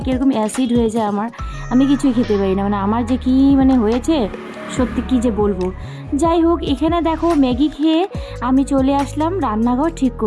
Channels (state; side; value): identical; both; correlation 1.00